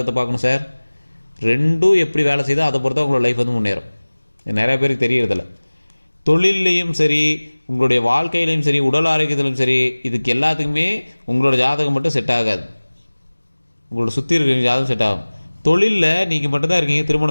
பார்க்கணும் சார். ரெண்டும் எப்படி வேலை செய்தோ அதை பொறுத்தா உங்களோட லைஃப் வந்து முன்னேறும். நிறைய பேருக்கு தெரியறதில்ல. தொழிலையும் சரி, உங்களுடைய வாழ்க்கையிலையும் சரி, உடல் ஆரோக்கியத்திலும் சரி, இதுக்கு எல்லாத்துக்குமே உங்களோட ஜாதகம் மட்டும் செட் ஆகாது, உங்களோட சுற்றி இருக்கிற ஜாதகம் செட் ஆகும். தொழிலில் நீங்கள் மட்டும்தான் இருக்கீங்க,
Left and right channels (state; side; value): inverted; both; correlation -1.00